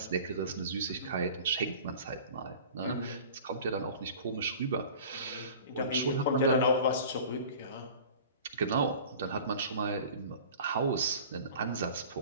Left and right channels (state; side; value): inverted; both; correlation -0.41